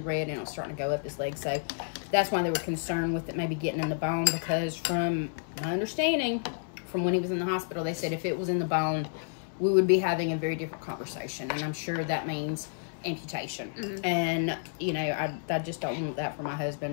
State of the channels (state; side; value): silent; right; 58 dB below the other